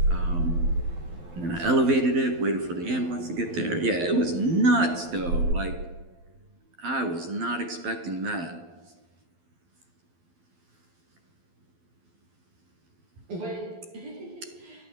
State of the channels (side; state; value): left; late; 12 ms